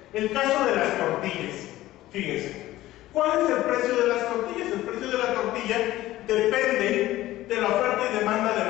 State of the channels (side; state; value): right; quieter; 15.8 dB